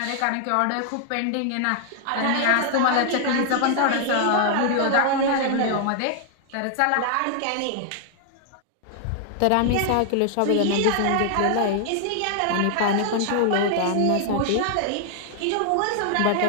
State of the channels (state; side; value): different; both; correlation 0.00